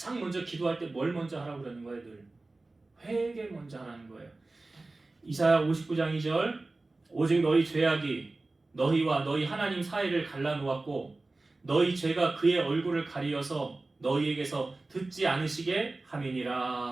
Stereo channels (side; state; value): left; quieter; 3.2 dB